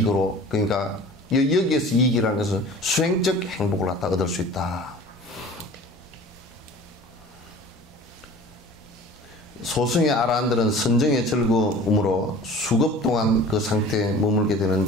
그러니까 여기에서 이익이라는 것은 수행적 행복을 갖다 얻을 수 있다. 소승의 아라한들은 선정의 즐거움으로 수급 동안 그 상태에 머물게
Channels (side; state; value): both; normal; correlation 0.43